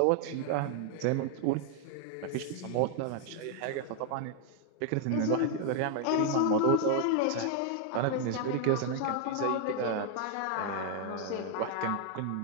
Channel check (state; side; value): different; both; correlation 0.00